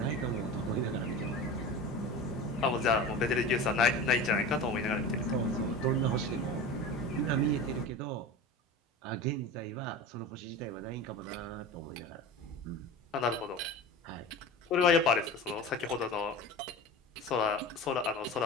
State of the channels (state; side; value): normal; both; correlation 0.31